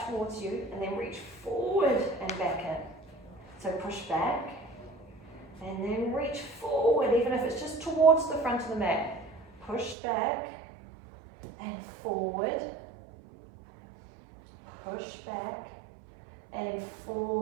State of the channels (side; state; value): left; drops out; at 10.0 s